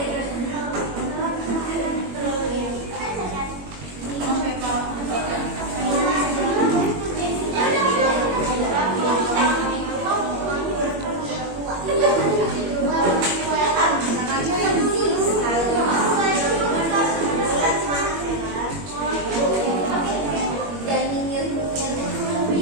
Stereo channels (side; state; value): left; late; 21 ms